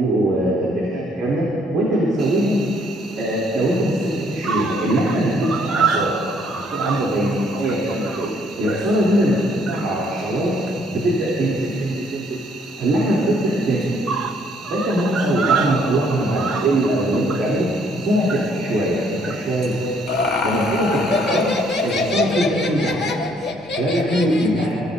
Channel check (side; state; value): both; normal; correlation 0.66